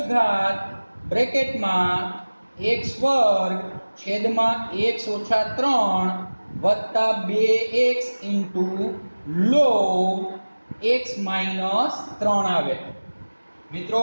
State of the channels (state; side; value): inverted; both; correlation -1.00